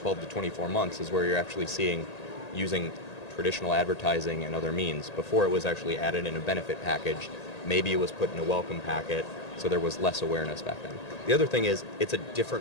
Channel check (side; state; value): right; late; 1.8 ms